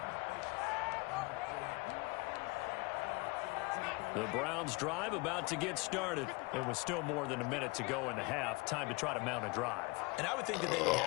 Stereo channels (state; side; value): quieter; right; 27.1 dB